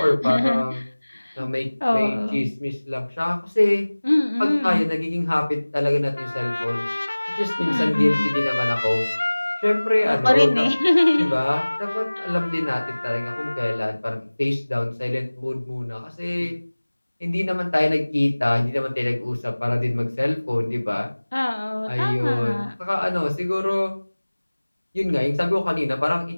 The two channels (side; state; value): both; inverted; correlation -1.00